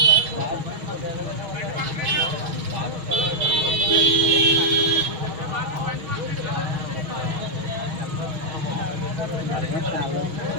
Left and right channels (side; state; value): left; late; 6.2 ms